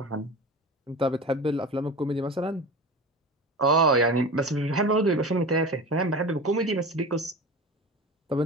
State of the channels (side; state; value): both; normal; correlation 0.31